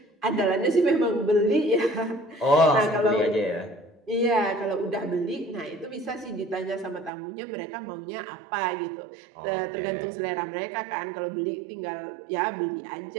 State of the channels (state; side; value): drops out; left; at 7.1 s